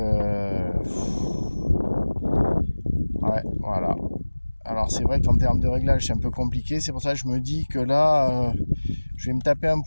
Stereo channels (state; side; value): inverted; both; correlation -1.00